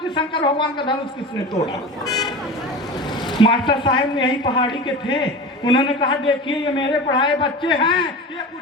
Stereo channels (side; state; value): both; normal; correlation 0.32